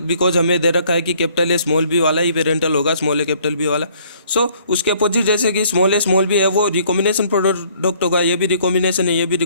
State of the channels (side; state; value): both; inverted; correlation -0.60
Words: हमें दे रखा है कि कैपिटल ए स्मॉल बी वाला ही पेरेंटल होगा, स्मॉल ए कैपिटल बी वाला। सो उसके अपोजिट जैसे कि स्मॉल ए स्मॉल बी है वो रिकॉम्बिनेशन प्रोडक्ट होगा, ये भी रिकॉम्बिनेशन है, ये भी